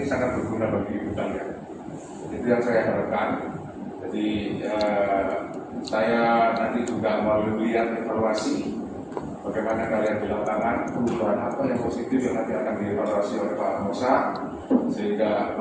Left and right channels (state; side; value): identical; both; correlation 1.00